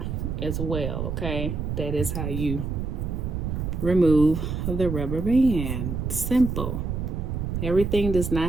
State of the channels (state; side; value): noise; right; rumble, 3 dB below the sound